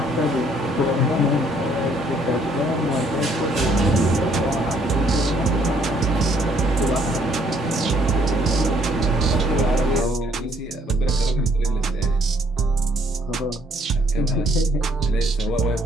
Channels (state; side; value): normal; both; correlation 0.65